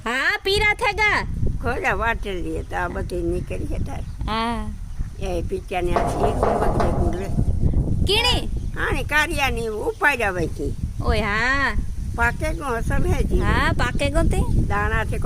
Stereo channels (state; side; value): identical; both; correlation 1.00